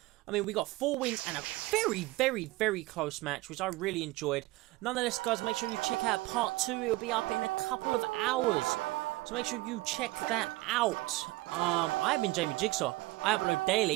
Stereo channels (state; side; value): quieter; left; 20.4 dB